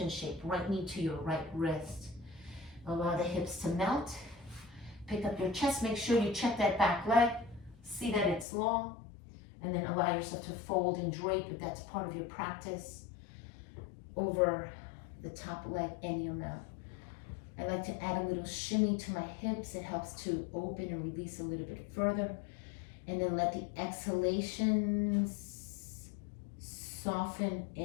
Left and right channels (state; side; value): drops out; right; at 8.5 s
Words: shape, right knee to your right wrist. Allow the hips to melt. Pick up your chest, make sure you check that back leg. See that it's long. And then allow yourself to fold and drape, if that's part of your practice, over the top leg any amount. I like to add a little shimmy to my hips. It helps to open and release a little bit further. And then let the exhalations soften